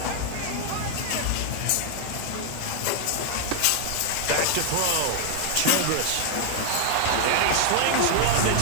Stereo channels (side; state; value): both; different; correlation 0.00